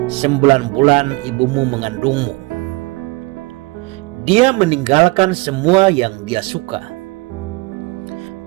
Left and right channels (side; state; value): left; quieter; 24.4 dB